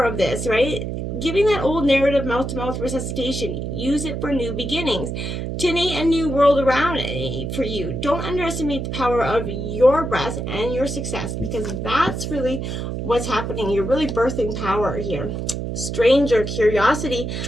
of this, right? Giving that old narrative mouth-to-mouth resuscitation. Use it for new beginnings. To innate a new world around it for you. Don't underestimate the power of your breath and your success, because that's really what's happening. You're really birthing power here. Stranger, curiosity.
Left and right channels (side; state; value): right; noise; hum, 4 dB below the sound